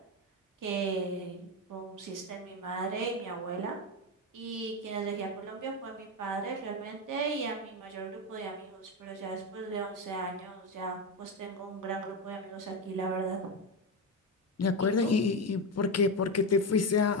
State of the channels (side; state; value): both; normal; correlation 0.13